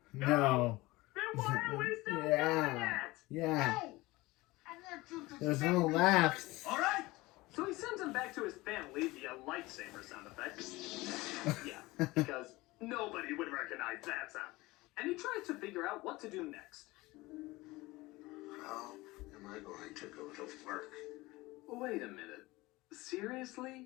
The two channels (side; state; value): right; quieter; 20.6 dB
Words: No. Then why are we still doing Yeah. it? Yeah. No! I want you to There's save no me. laughs. All right. So he sends him back to his family via lightsaber sound effects. Yeah, because nobody would recognize that sound. And he tries to figure out what to do next. How am I going to go to work? Wait a minute. Seriously?